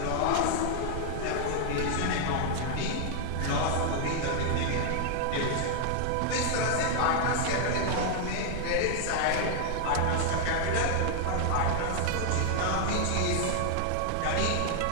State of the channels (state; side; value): different; both; correlation 0.00